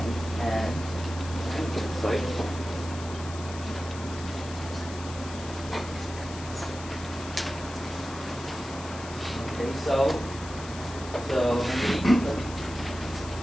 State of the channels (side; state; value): left; noise; hiss, 14 dB below the sound